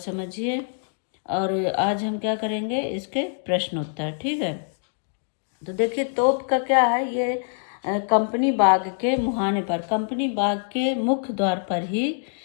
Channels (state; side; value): silent; right; digital silence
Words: और आज हम क्या करेंगे, इसके प्रश्न उत्तर, ठीक है। तो देखिए तोप का क्या है, ये कंपनी बाग के मुहाने पर, कंपनी बाग के मुख्य द्वार पर ही